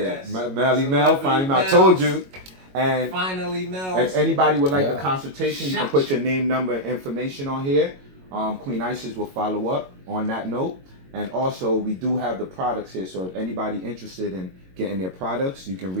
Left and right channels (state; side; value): late; left; 22 ms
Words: Melly Mel, finally, I told you. And finally, Mel. If anybody would like a consultation, you can put your name, number, and information on here. Queen Isis will follow up on that note. And also, we do have the products here. So if anybody interested in getting their products, you can